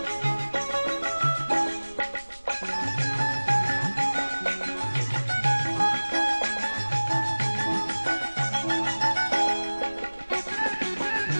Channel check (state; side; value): inverted; both; correlation -1.00